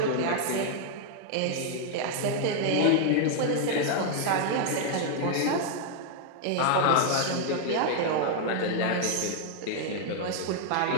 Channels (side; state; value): both; different; correlation 0.00